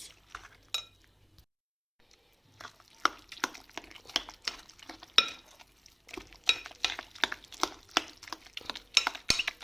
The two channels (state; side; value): identical; both; correlation 1.00